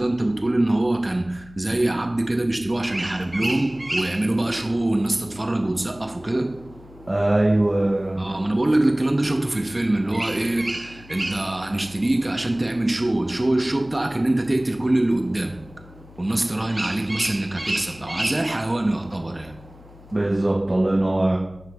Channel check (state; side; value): noise; left; hum, 22 dB below the sound